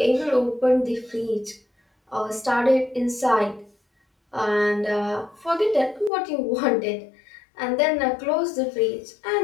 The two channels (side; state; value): right; drops out; at 6.1 s